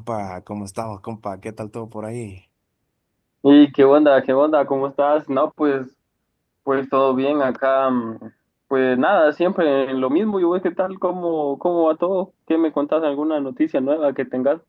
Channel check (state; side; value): identical; both; correlation 1.00